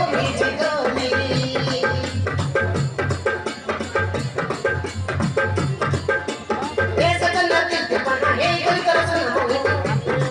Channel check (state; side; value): identical; both; correlation 1.00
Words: जीवनी ए सजन दिल दीवाना हे कोई कर सुन मोही